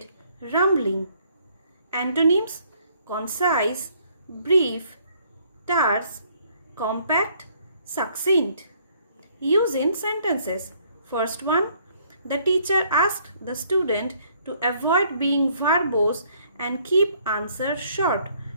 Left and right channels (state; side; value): inverted; both; correlation -0.64